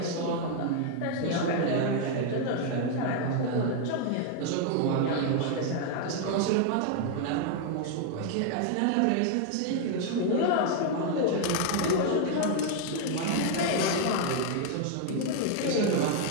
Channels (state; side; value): different; both; correlation 0.00